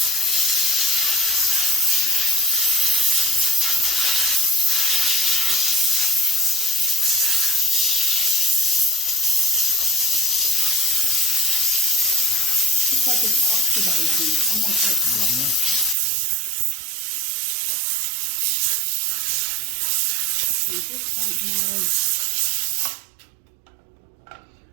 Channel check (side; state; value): left; drops out; at 16.0 s